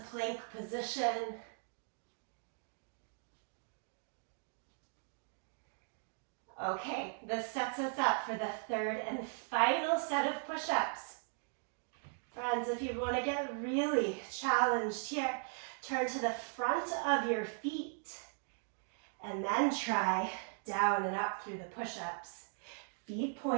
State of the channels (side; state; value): left; silent; 52 dB below the other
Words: plank position. Okay, this sets us up for the third and final set of push-ups. Friends, if you want to get really challenged here, turn to the front of your feet and then try down and up through the push-ups. Feet